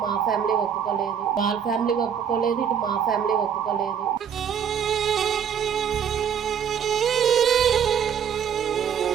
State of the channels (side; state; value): left; quieter; 8.0 dB